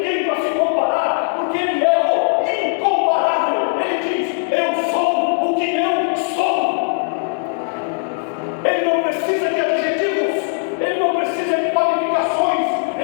para se comparar, porque ele é o incomparável, ele diz: eu sou o que eu sou. Ele não precisa de adjetivos, ele não precisa de qualificações,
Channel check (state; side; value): silent; right; 67 dB below the other